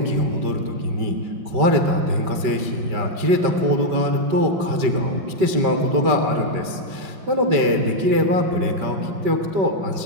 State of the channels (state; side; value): late; left; 5.2 ms